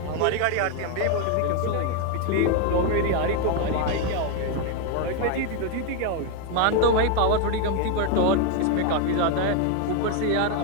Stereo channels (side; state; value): both; different; correlation 0.01